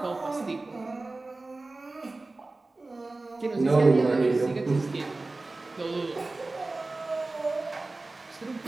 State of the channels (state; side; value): quieter; left; 3.2 dB